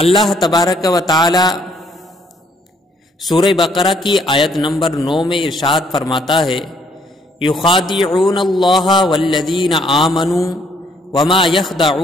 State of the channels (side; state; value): both; normal; correlation 0.67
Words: تبارک و تعالی سورہ بقرہ کی آیت نمبر 9 میں ارشاد فرماتا ہے، یخادعون اللہ والذین آمنوا وما